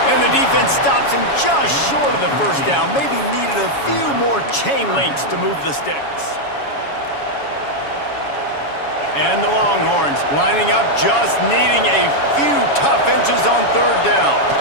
And the defense stops him just short of the 1st down. Maybe needed a few more chain links to move the sticks. And the Longhorns lining up, just needing a few tough inches on 3rd down.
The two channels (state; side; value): late; right; 7.1 ms